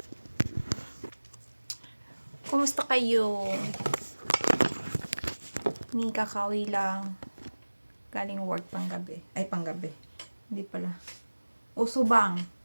Kumusta kayo? Ni kakawi lang. Galing work panggabi. Ay, panggabi. Hindi pala. Usubang.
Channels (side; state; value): both; inverted; correlation -1.00